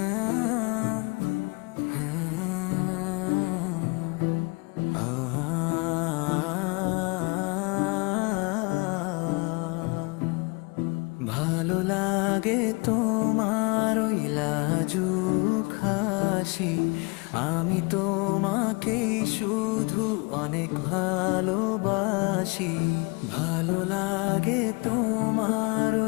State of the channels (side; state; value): right; quieter; 29.4 dB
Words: লাগে তোমার ওই লাজুক হাসি, আমি তোমাকে শুধু অনেক ভালোবাসি। ভালো লাগে তোমার